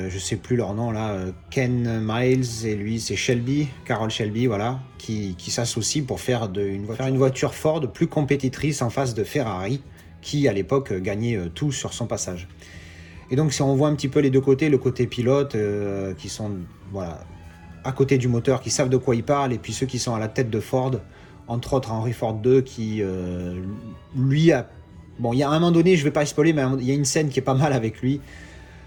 sais plus leur nom là, Ken Miles et lui c'est Shelby, Carroll Shelby, voilà, qui s'associent pour faire une voiture Ford plus compétitrice en face de Ferrari, qui à l'époque gagnait tout sur son passage. Et donc si on voit un petit peu les deux côtés, le côté pilote qui sont voilà, à côté du moteur, qui savent de quoi ils parlent, et puis ceux qui sont à la tête de Ford, entre autres Henry Ford II, qui lui a... Bon, il y a un moment donné, je vais pas spoiler, mais il y a une scène qui est pas mal avec lui.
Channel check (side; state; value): both; identical; correlation 1.00